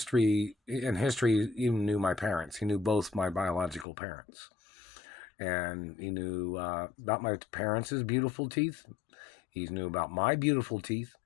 he even knew my parents. He knew both my biological parents. And he knew about my parents' beautiful teeth. He knew about my beautiful teeth.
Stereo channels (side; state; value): right; drops out; at 3.9 s